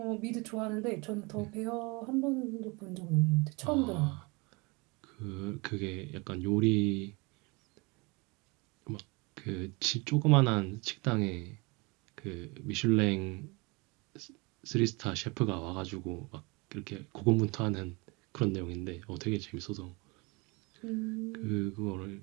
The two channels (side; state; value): left; quieter; 27.4 dB